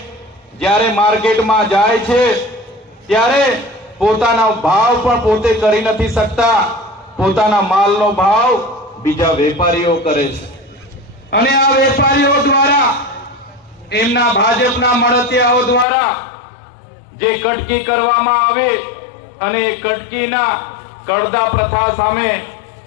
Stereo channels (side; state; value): right; drops out; at 15.9 s